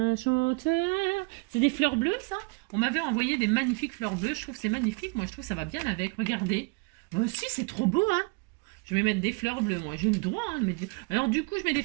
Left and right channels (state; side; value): quieter; left; 31.3 dB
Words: chanteur. C'est des fleurs bleues, ça? On m'avait envoyé des magnifiques fleurs bleues. Je trouve que c'est magnifique. Moi, je trouve que ça va bien avec. Regardez. Moi aussi, c'est trop beau, hein? Je vais mettre des fleurs bleues, moi. J'ai le droit, hein, de mettre... Alors, du coup, je mets des